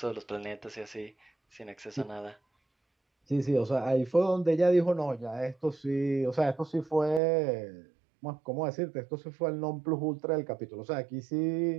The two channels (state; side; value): drops out; left; at 7.2 s